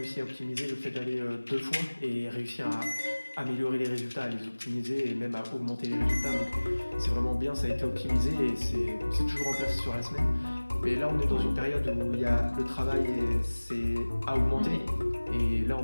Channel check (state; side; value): inverted; both; correlation -1.00